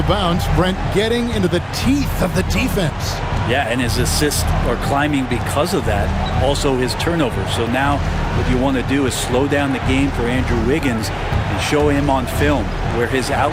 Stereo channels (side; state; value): both; identical; correlation 1.00